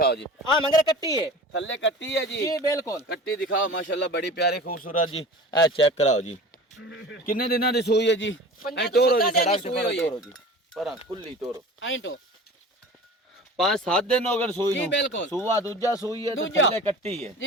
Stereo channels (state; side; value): normal; both; correlation 0.38